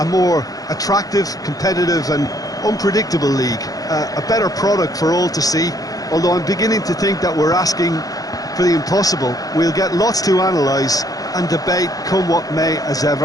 more attractive, competitive and unpredictable league. A better product for all to see, although I'm beginning to think that we're asking for the impossible. We'll get lots to analyse and debate come what may as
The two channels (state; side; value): late; right; 0.18 ms